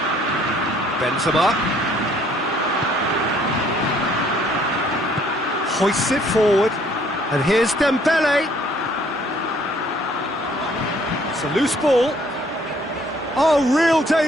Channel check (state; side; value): normal; both; correlation 0.61